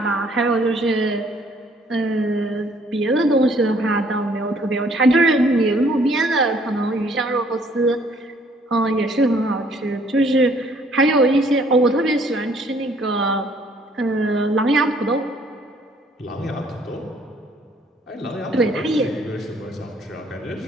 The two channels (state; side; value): normal; both; correlation 0.62